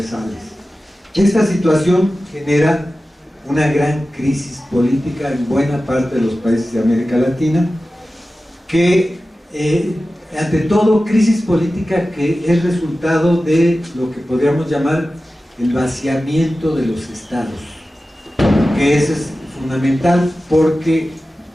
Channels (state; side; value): normal; both; correlation 0.95